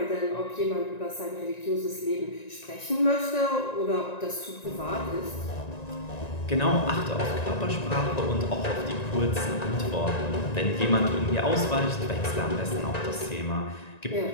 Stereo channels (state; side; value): late; right; 1.9 ms